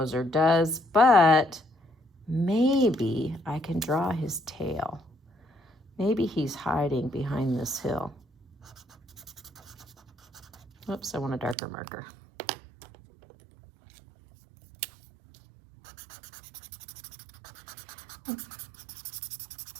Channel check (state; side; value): drops out; left; at 11.6 s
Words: does, but maybe I can draw his tail. Maybe he's hiding behind this hill. Oops, I want a darker marker.